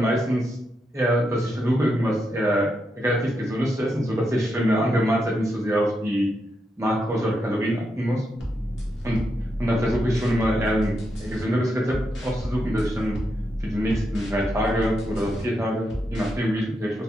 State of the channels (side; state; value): both; normal; correlation 0.83